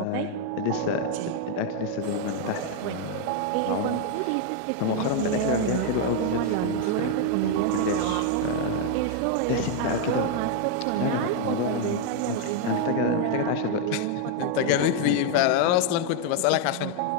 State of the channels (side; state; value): both; different; correlation 0.00